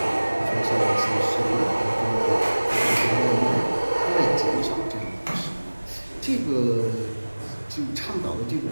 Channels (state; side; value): inverted; both; correlation -1.00